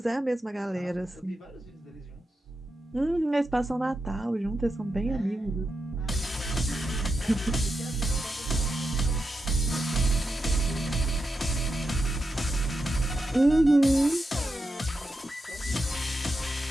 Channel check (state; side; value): normal; both; correlation 0.87